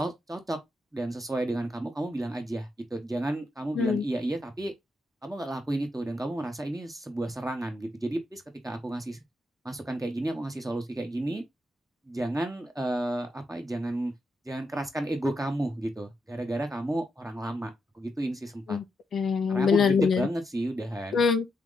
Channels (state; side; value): normal; both; correlation 0.83